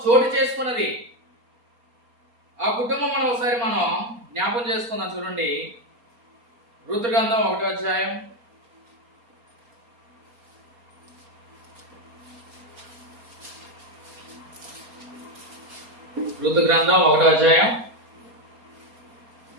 చోటు చేసుకున్నది. ఆ కుటుంబం ఒకసారి మనం జ్ఞాపం చేసుకుందాం. చూడండి, రూతు గ్రంథం 1వ అధ్యాయం. రూతు గ్రంథం 1వ అధ్యాయం.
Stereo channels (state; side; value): late; left; 4.3 ms